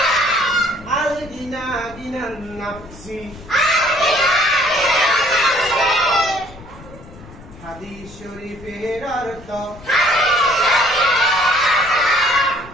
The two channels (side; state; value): left; noise; rumble, 19 dB below the sound